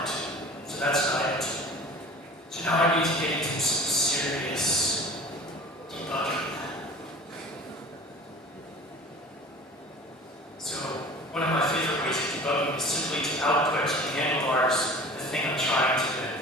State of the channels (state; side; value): normal; both; correlation 0.41